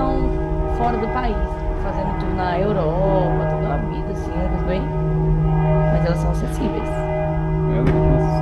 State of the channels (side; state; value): both; identical; correlation 1.00